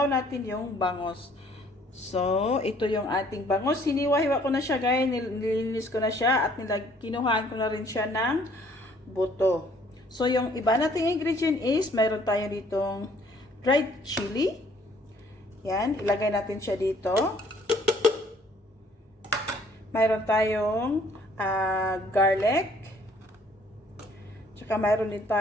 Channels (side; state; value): both; normal; correlation 0.60